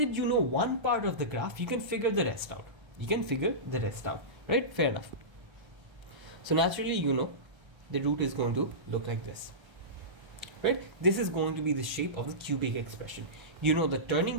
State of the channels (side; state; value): left; late; 1.3 ms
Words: one part of the graph, you can figure the rest out. Right? Fair enough. So naturally, the root is going to look like this, right? This is going to be the shape of the cubic expression. The